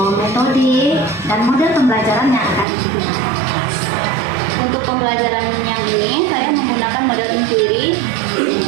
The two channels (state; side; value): drops out; left; at 2.7 s